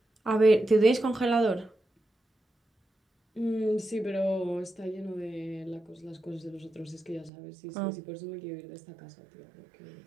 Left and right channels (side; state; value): left; drops out; at 7.3 s